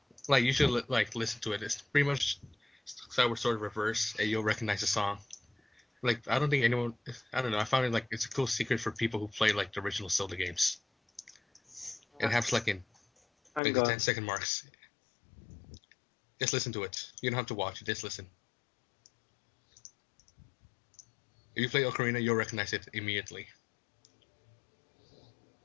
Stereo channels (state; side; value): drops out; right; at 13.6 s